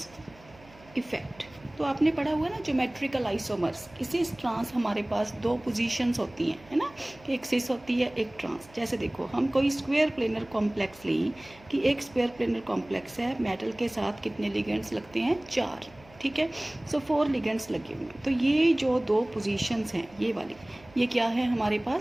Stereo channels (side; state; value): right; noise; hum, 25 dB below the sound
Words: इफेक्ट। तो आपने पढ़ा हुआ ना ज्योमेट्रिकल आइसोमर्स। इसी ट्रांस हमारे पास दो पोजीशंस होती हैं, है ना, एक सिस होती है एक ट्रांस। जैसे देखो हम कोई स्क्वायर प्लेनर कॉम्प्लेक्स लें कि एक स्क्वायर प्लेनर कॉम्प्लेक्स है, मेटल के साथ कितने लिगेंड्स लगते हैं 4, ठीक है। सो 4 लिगेंड्स लगे हुए हैं। तो ये जो दो पोजीशंस हैं ये वाली, ये क्या है हमारे